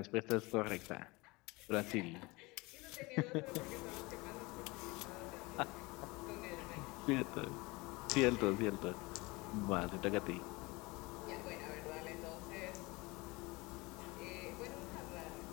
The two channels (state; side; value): quieter; right; 24.0 dB